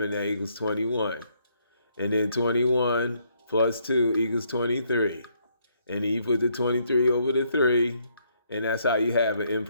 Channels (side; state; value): both; inverted; correlation -0.71